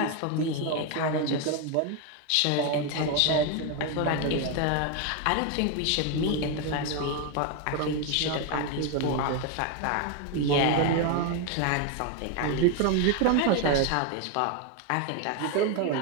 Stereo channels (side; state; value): both; different; correlation 0.01